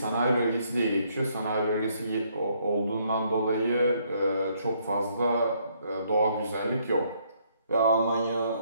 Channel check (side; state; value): both; inverted; correlation -0.69